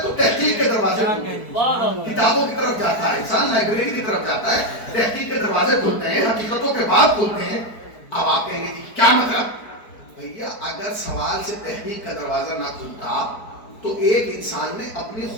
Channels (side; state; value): right; late; 4.6 ms